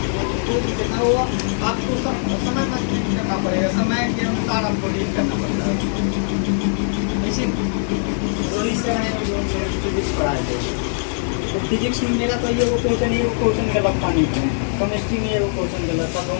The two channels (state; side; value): silent; right; digital silence